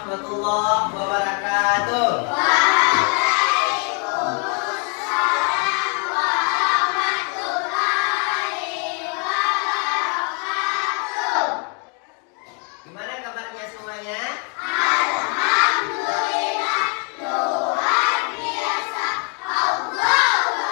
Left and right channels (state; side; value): quieter; right; 37.8 dB